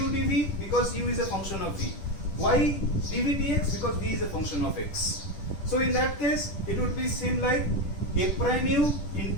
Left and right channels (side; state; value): right; late; 10 ms